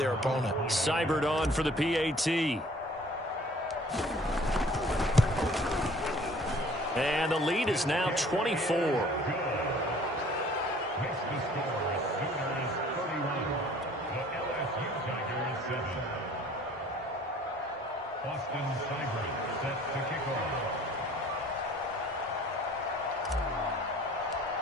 opponent. Seibert on for the PAT. And the lead is now 24.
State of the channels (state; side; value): normal; both; correlation 0.53